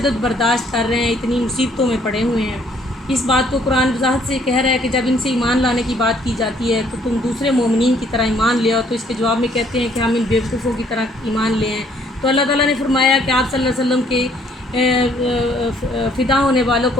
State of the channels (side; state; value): both; normal; correlation 0.64